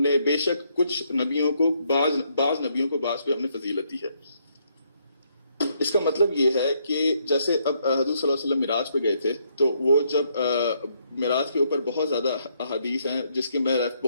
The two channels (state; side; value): inverted; both; correlation -0.73